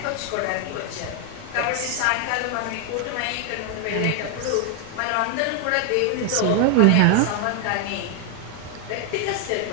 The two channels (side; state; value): both; different; correlation 0.00